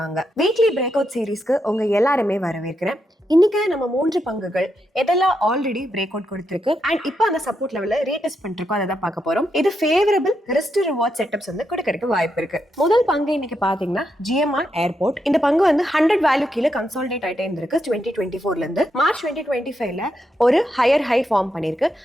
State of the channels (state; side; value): normal; both; correlation 0.82